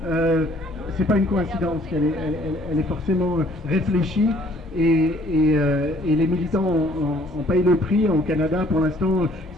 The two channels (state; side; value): normal; both; correlation 0.60